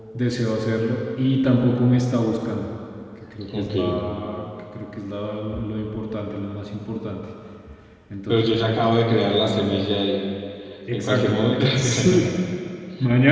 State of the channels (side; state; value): both; identical; correlation 1.00